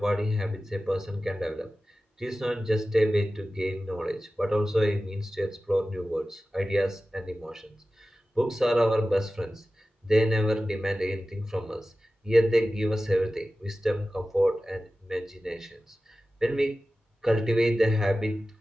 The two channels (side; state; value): both; normal; correlation 0.95